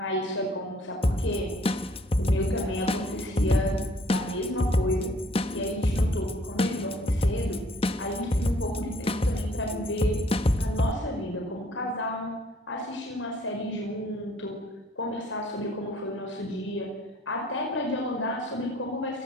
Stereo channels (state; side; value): normal; both; correlation 0.60